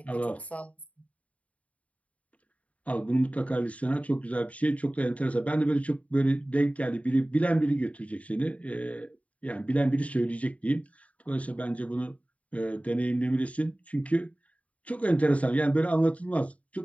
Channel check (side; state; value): right; late; 0.067 ms